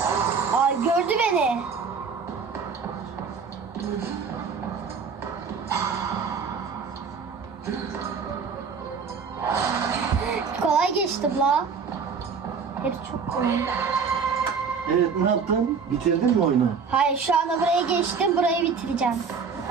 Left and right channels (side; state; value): left; quieter; 5.7 dB